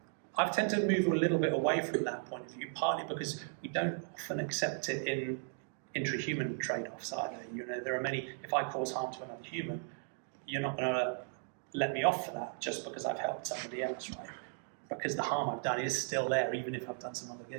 I've tended to move a little bit away from that point of view, partly because we don't often accept it in intra-human trade-offs either. You know, there are many, if I cause harm to another human, you're not going to let me off for that just because I've helped somebody else, right? Because the harm I've done is still there, even if I've done some other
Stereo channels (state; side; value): silent; left; 54 dB below the other